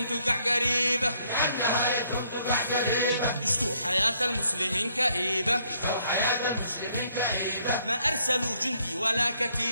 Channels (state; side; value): inverted; both; correlation -0.69